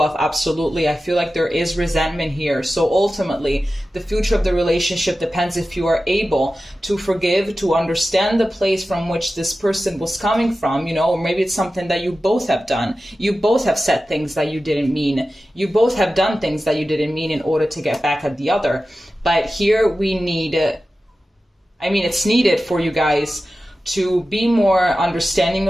absolutely. I feel like there is resentment here. So ultimately, the future of the relationship depends if you are able to forgive, to understand the place from which this person was coming from, you know, or maybe it's something that you both have done. You both have said things that you didn't mean. You both have done things that you didn't mean in order to get back at the other. But here we need, it's needed for you guys to be more understanding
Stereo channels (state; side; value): normal; both; correlation 0.94